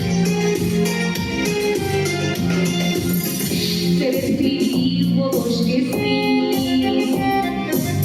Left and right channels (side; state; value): both; identical; correlation 1.00